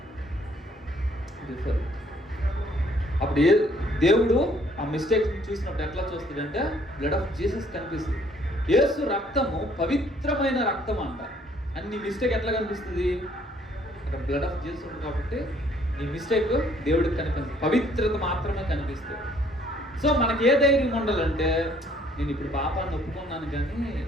before. అప్పుడు దేవుడు ఆ మిస్టేక్స్ చూసినప్పుడు ఎట్లా చూస్తాడంటే బ్లడ్ ఆఫ్ జీసస్ కనిపిస్తుంది. యేసు రక్తము పవిత్రమైన రక్తం అంట. అని నీ మిస్టేక్ ఎట్లా కనిపిస్తుంది? అక్కడ బ్లడ్ ఆఫ్ జీసస్ ఉంది కాబట్టి నీ మిస్టేక్ దేవుడికి కనిపిస్తుంది, పవిత్రత మాత్రమే కనిపిస్తుంది. సో మనకి ఏ ధైర్యం ఉండాలంటే, నేను ఇప్పుడు పాపాన్ని ఒప్పుకున్నాను కానీ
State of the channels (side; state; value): both; normal; correlation 0.62